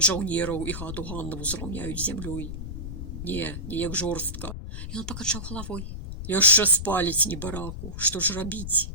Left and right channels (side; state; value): left; noise; rumble, 7 dB below the sound